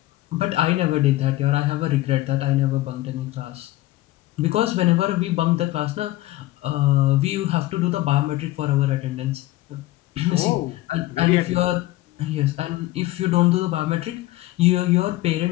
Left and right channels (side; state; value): right; quieter; 17.2 dB